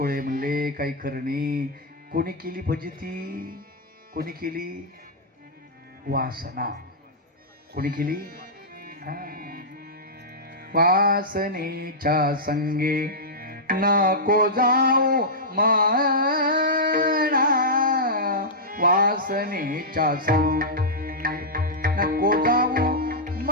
म्हणले काही खरं नाही. कोणी केली फजिती? कोणी केली? वासना. कोणी केली? वासनेच्या संगे नको जाऊ म्हणा, वासनेच्या संगे नको जाऊ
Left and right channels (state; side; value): normal; both; correlation -0.11